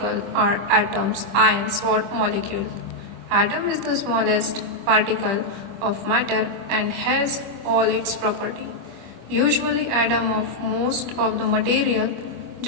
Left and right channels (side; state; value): left; late; 25 ms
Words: are atoms, ions or molecules. Atom is the smallest particle of matter and has all its property. Usually atom of most of the material